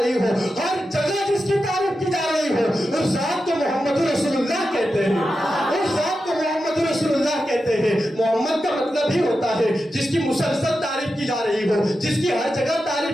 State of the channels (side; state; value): both; normal; correlation 0.90